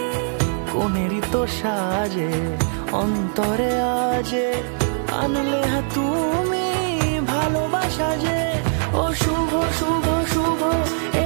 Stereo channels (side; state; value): left; silent; digital silence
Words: কোনেরই তো সাজে অন্তরে আজে, আনলে তুমি ভালোবাসা যে। ও শুভ শুভ শুভ এ